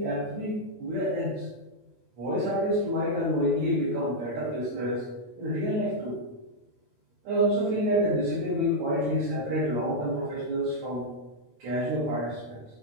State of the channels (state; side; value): late; left; 8.8 ms